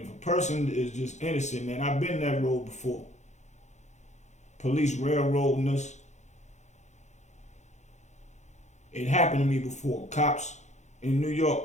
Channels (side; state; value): right; late; 0.34 ms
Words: a person is just innocent, man, I've been that road before. Police railroading us. It happened to me before. Cops in New York,